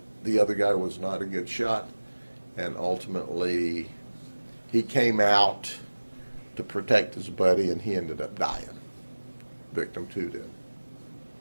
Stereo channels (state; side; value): inverted; both; correlation -1.00